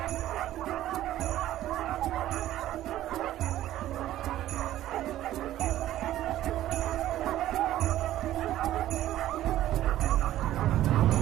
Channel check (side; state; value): left; quieter; 13.6 dB